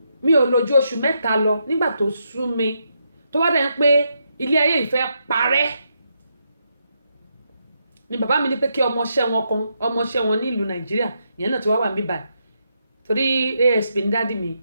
mi ò lò ju oṣù 3 lọ nígbà tó sú mi tó wá dẹ̀ ń pé ilé ayé ìfẹ́ parẹ́ ni bàbá mi ní pé kí ọmọọṣẹ́ wọn ní ìlú Nàìjíríà ìyẹn náà ti wá wà mí báyìí torí ASP ní dádì mi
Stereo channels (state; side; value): inverted; both; correlation -0.81